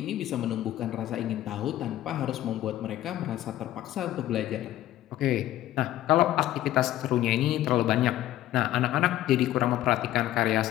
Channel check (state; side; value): quieter; right; 13.9 dB